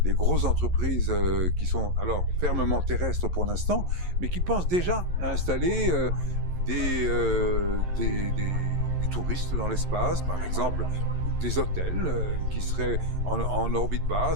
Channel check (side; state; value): left; late; 11 ms